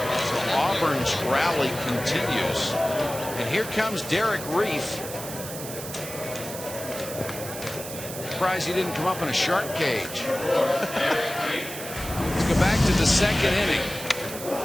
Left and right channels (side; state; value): right; noise; hiss, 10 dB below the sound